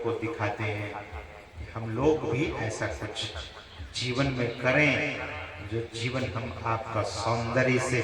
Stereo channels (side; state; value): both; identical; correlation 1.00